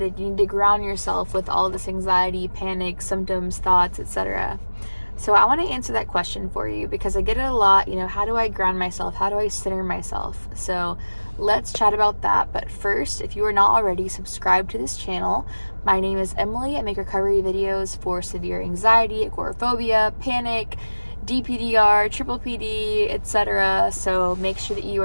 You need to ground yourself with all this anxiety, panic, symptoms, thoughts, etc. So I want to answer that question for you because I get it a lot. How do I ground myself? How do I center myself? So let's chat about that. But first, if you are not already subscribed to this channel, my name is Emily. I make recovery videos for severe anxiety, agoraphobia, panic, DPDR, triple PD, etc. So make sure that you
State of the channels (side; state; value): both; inverted; correlation -1.00